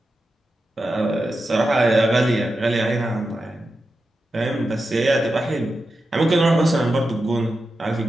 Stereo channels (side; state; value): both; normal; correlation 0.90